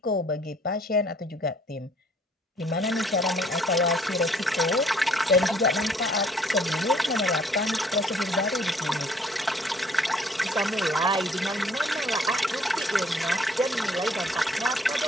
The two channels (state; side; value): normal; both; correlation 0.60